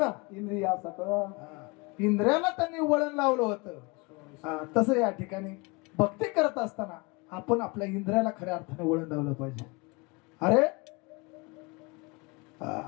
इंद्रिया सकळ, इंद्रियाला त्यांनी वळण लावलं होतं. तसं या ठिकाणी भक्ती करत असताना आपण आपल्या इंद्रियाला खऱ्या अर्थाने वळण लावलं पाहिजे. अरे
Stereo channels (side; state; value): right; quieter; 27.5 dB